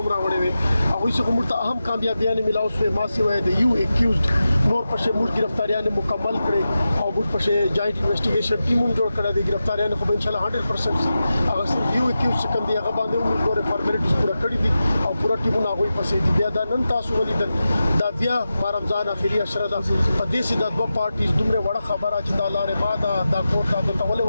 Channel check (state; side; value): inverted; both; correlation -0.92